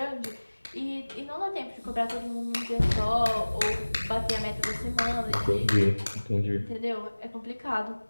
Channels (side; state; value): both; inverted; correlation -1.00